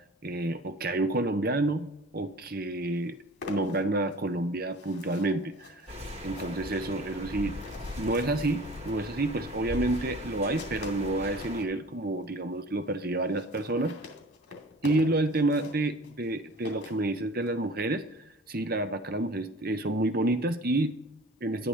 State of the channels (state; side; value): normal; both; correlation 0.44